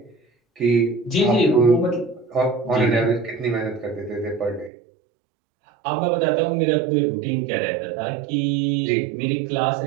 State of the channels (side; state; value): left; drops out; at 4.7 s